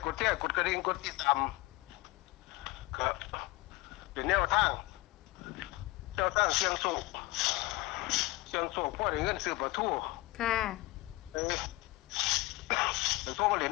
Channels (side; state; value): right; quieter; 21.1 dB